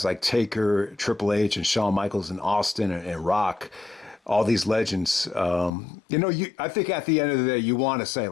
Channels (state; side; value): drops out; right; at 5.7 s